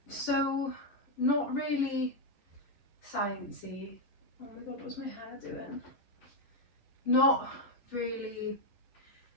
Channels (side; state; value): right; late; 10 ms